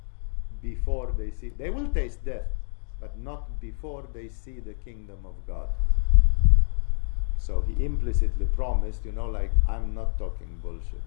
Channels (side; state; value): right; silent; digital silence